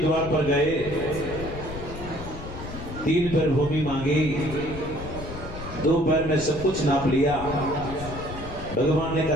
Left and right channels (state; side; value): noise; left; rumble, 10 dB below the sound